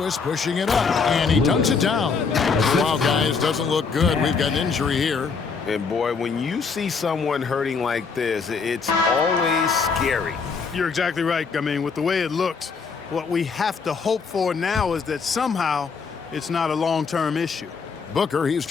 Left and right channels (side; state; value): right; quieter; 5.2 dB